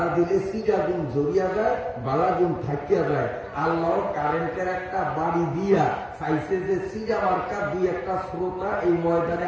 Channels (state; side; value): identical; both; correlation 1.00